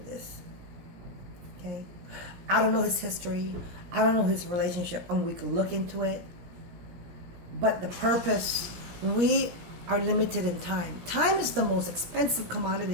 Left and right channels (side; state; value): left; late; 17 ms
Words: Okay? I don't know his history. I don't know his relationship, and we can look into it. But the purpose, we are limited in time. Time is the most expensive